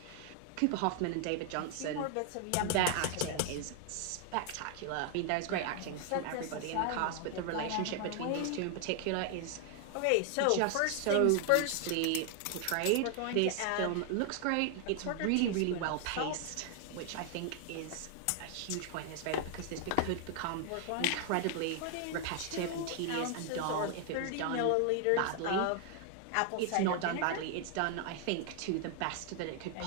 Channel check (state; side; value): different; both; correlation 0.00